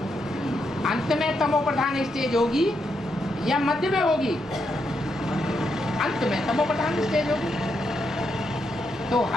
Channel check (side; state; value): both; normal; correlation 0.81